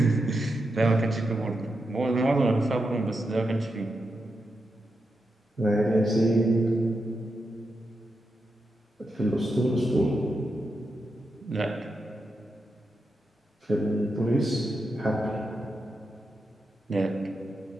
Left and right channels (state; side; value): normal; both; correlation 0.86